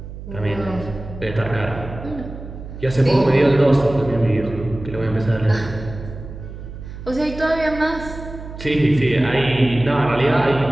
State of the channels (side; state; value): right; noise; hum, 12 dB below the sound